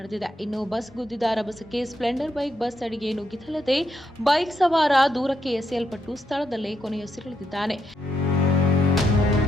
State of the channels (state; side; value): normal; both; correlation 0.80